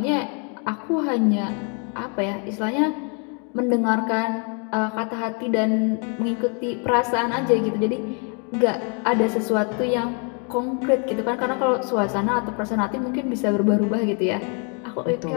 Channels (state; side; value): quieter; right; 37.9 dB